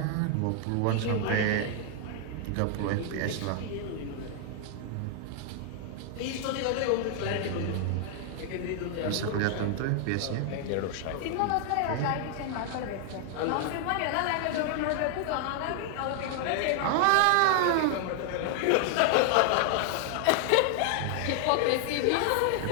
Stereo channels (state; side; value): different; both; correlation 0.00